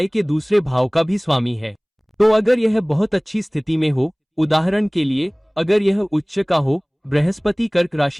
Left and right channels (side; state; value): both; identical; correlation 1.00